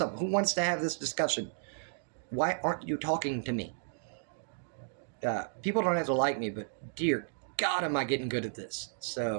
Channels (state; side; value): silent; left; digital silence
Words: Who wants to have this discussion? Why aren't you talking to me? People don't have to like me, but dear God, am I getting good at this.